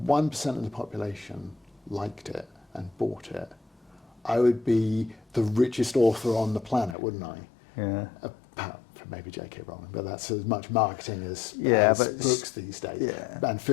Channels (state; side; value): drops out; right; at 7.0 s